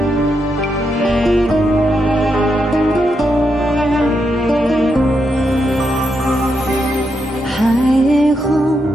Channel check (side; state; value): both; normal; correlation 0.82